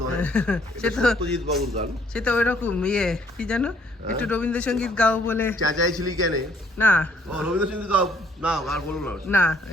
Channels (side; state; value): both; normal; correlation 0.63